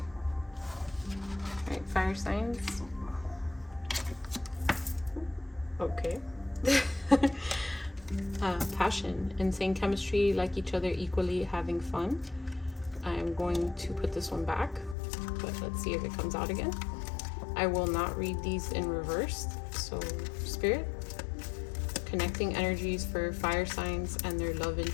right, fire signs. Okay. Passion, insane chemistry, like each other equally, having fun. I'm going to put this one back, but let's see if it comes out again. I will not read these in reverse. So, Spirit, connecting energies for fire signs and their love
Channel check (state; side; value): drops out; right; at 15.0 s